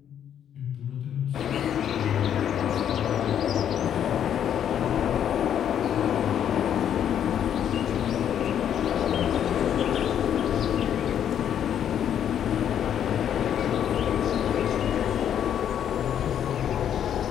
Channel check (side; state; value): right; quieter; 9.5 dB